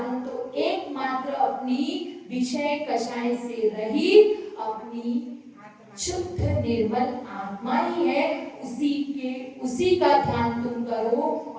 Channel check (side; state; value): both; identical; correlation 1.00